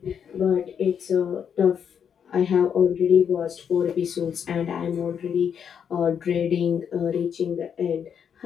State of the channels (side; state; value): right; quieter; 7.8 dB